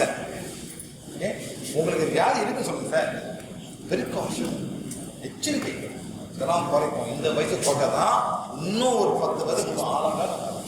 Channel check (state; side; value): identical; both; correlation 1.00